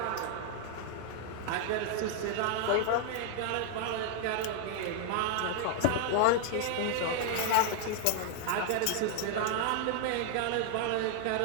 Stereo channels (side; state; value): both; different; correlation 0.00